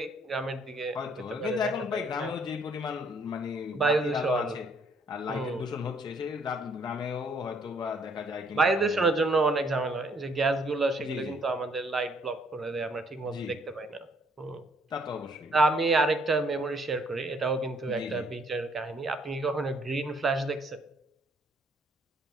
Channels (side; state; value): both; normal; correlation 0.65